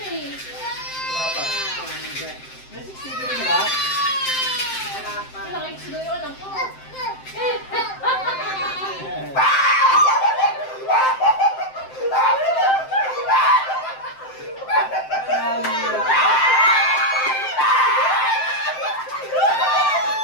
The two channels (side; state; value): right; late; 7.7 ms